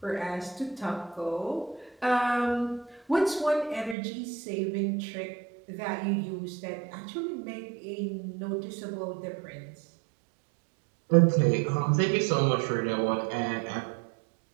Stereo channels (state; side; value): drops out; left; at 4.0 s